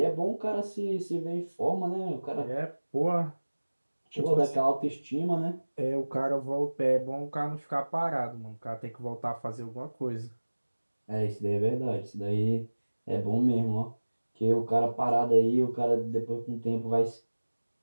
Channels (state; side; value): inverted; both; correlation -1.00